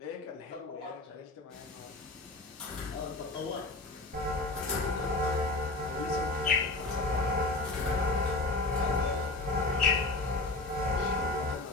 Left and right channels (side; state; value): right; quieter; 3.1 dB